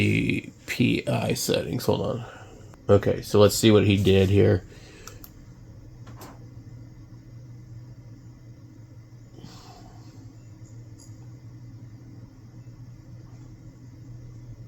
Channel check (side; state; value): both; identical; correlation 1.00